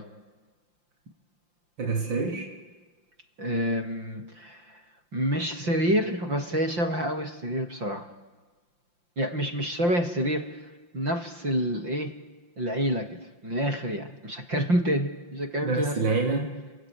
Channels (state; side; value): late; left; 5.7 ms